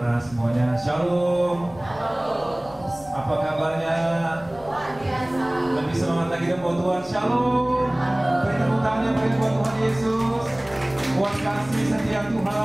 semuanya. Shalom. Apa kabarnya? Lebih semangat lagi dong buat Tuhan. Shalom. Beri tepuk tangannya bagi buat Tuhan Yesus. Buat kasih setia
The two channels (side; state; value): left; noise; rumble, 21 dB below the sound